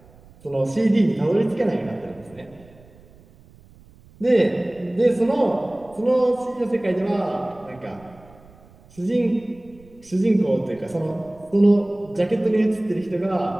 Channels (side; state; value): right; noise; rumble, 26 dB below the sound